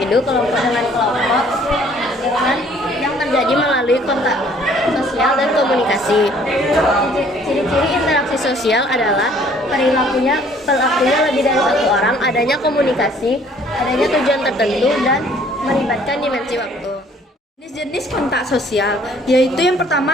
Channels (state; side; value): normal; both; correlation 0.58